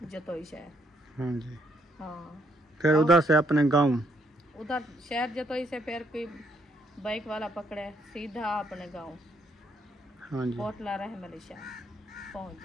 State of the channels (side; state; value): both; normal; correlation 0.72